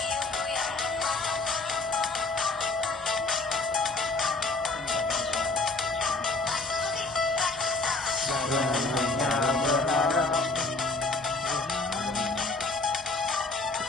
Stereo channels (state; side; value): quieter; right; 3.4 dB